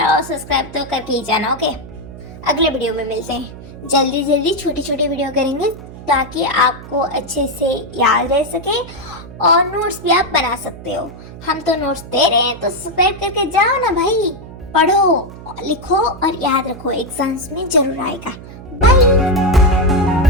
और सब्सक्राइब तो करके ही जाना। ओके, अगले वीडियो में मिलते हैं। जल्दी छोटी छोटी वीडियो करेंगे ताकि आपको अच्छे से याद रह सके और नोट्स भी आप बना सकते हो। हम तो नोट्स दे रहे हैं तो सब्सक्राइब करके जाओ ना भाई, पढ़ो, लिखो और याद रखो, एग्जाम्स में जरूर आएगा। बाय।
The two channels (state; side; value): noise; right; hum, 15 dB below the sound